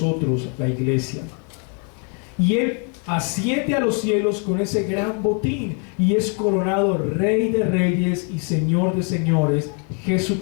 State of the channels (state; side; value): quieter; right; 39.5 dB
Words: la iglesia. Y Él asciende a los cielos con ese gran botín y es coronado Rey de reyes y Señor de señores.